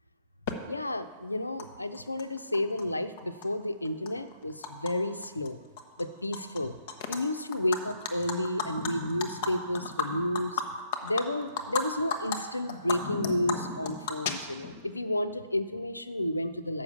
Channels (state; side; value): inverted; both; correlation -0.74